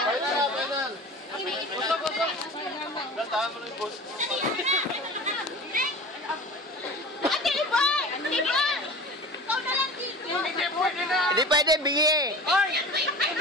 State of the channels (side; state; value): both; normal; correlation 0.36